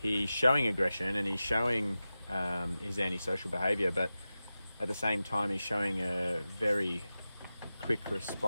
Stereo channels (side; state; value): both; inverted; correlation -0.94